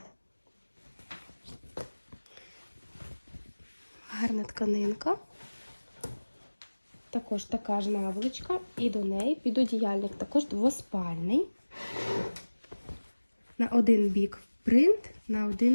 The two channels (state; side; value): inverted; both; correlation -1.00